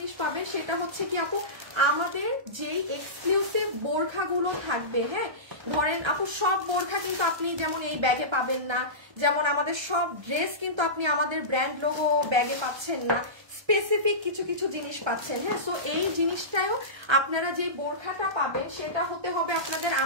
পাবেন, সেটা হচ্ছে কি আপু, আমাদের যেই এক্সক্লুসিভ বোরখাগুলো থাকবে। হ্যাঁ ধরেন আপু সব বোরখা কিন্তু আপনি যেমন এই ব্যাগে পাবেন না, যেমন আমাদের সব ড্রেস কিন্তু আপনি আমাদের ব্র্যান্ড লোগো ব্যাগে পাচ্ছেন না, স্পেসিফিক কিছু কিছু জিনিস পাচ্ছেন। হ্যাঁ সো এই জিনিসটাও আপনারা যে বোরখাটা পাবেন সেটা হতে হবে আপনাদের,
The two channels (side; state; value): left; late; 1.3 ms